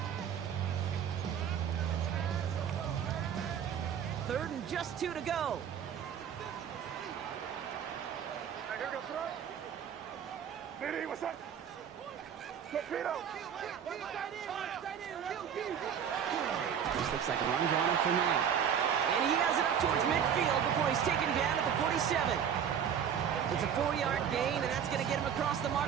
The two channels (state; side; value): quieter; left; 8.3 dB